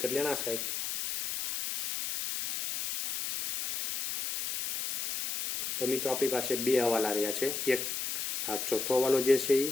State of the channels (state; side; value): noise; left; hiss, 3 dB below the sound